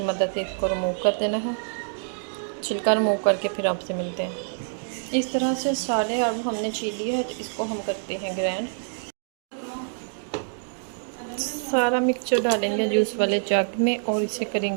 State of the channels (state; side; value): silent; left; digital silence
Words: मदद से इसको रिमूव कर देना है। छिलका रिमूव करके फिर आपसे मिलते हैं। इस तरह से सारे अब हमने छील लिए है। तो इसको हम करते हैं ग्राइंड। सारा मिक्सचर डालेंगे जूस वाले जग में और इसे